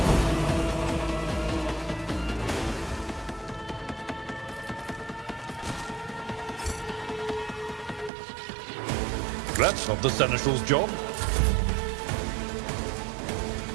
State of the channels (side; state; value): left; drops out; at 8.1 s